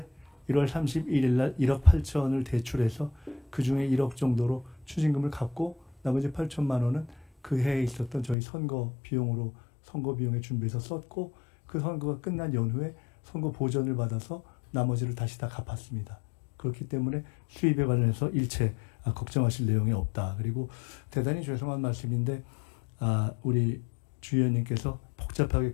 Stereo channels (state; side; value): drops out; right; at 8.3 s